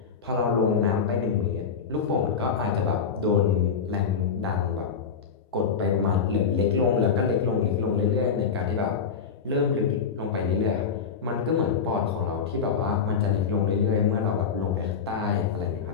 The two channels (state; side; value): quieter; right; 6.2 dB